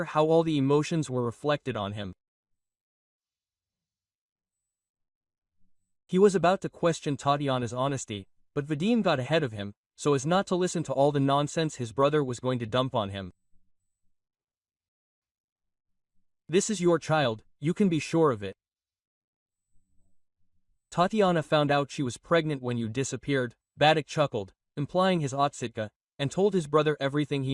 how all the emotions were reflected on him. He was about to question Tatiana's honesty, but Vadim got ahead of him, so as not to listen to all the nonsense his brother was going to dump on him. This is your child, you can be sure of it. Tatiana found out she was pregnant when you disappeared, Vadik chuckled, implying his otsitka, and told his brother everything he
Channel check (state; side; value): identical; both; correlation 1.00